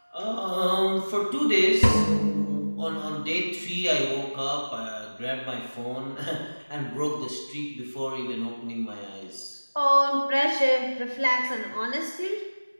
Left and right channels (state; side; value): inverted; both; correlation -1.00